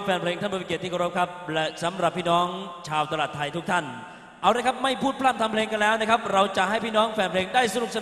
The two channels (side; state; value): both; identical; correlation 1.00